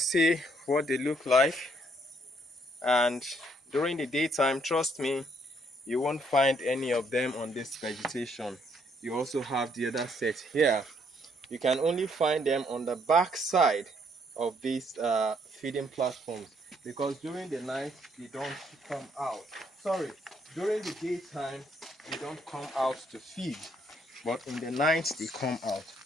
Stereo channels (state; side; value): normal; both; correlation 0.69